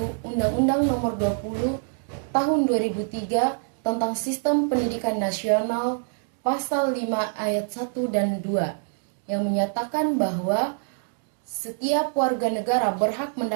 Undang-Undang Nomor 20 Tahun 2003 tentang Sistem Pendidikan Nasional Pasal 5 Ayat 1 dan 2 yang menyatakan bahwa setiap warga negara berhak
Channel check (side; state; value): left; silent; 61 dB below the other